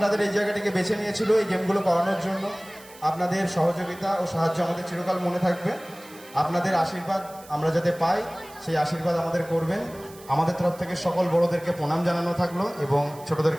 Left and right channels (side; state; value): right; noise; hiss, 21 dB below the sound